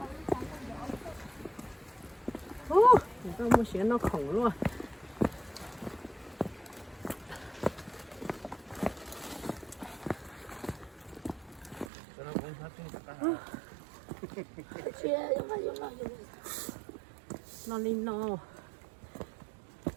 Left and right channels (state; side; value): drops out; left; at 11.9 s